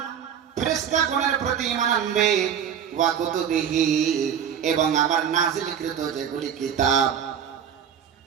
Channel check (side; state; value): left; quieter; 8.3 dB